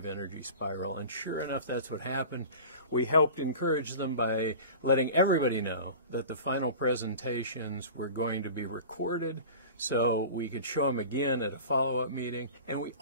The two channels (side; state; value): both; inverted; correlation -0.36